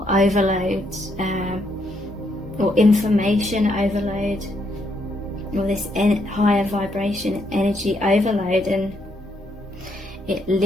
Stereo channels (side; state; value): both; normal; correlation 0.75